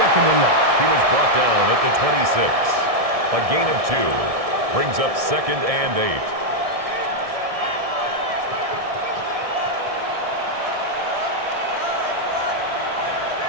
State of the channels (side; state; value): left; late; 1.7 ms